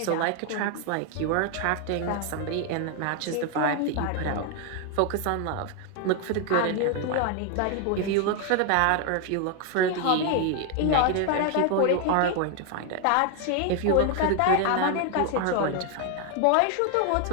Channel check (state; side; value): different; both; correlation 0.00